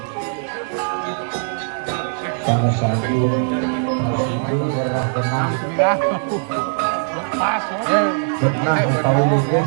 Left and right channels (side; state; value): left; silent; 66 dB below the other